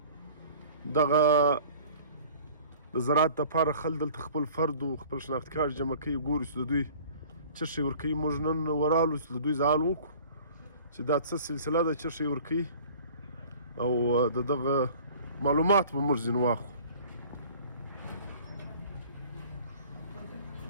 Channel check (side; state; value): both; inverted; correlation -0.47